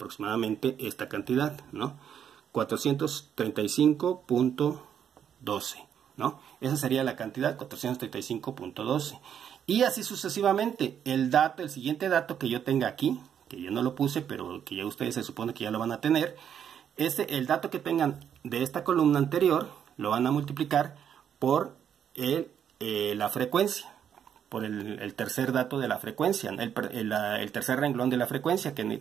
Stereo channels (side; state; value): left; quieter; 8.8 dB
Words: esta cantidad, ¿no? 435.12, ¿no? Esa sería la cantidad, 435.12. Y así sucesivamente. El siguiente dato que yo tenga aquí, que yo no lo puse, pero que ya ustedes se supone que ya lo van a tener, el dato que tengan de esta columna anterior, lo van a multiplicar por la frecuencia, por el tercer dato de la frecuencia, el tercer renglón de la frecuencia, que